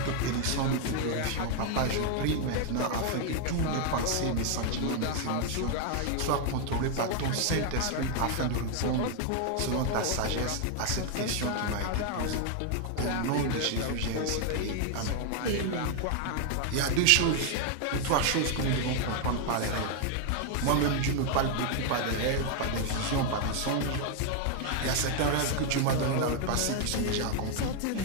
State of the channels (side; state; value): both; different; correlation 0.00